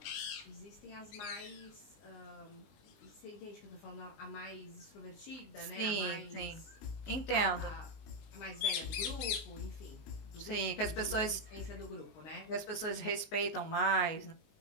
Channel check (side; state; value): right; late; 20 ms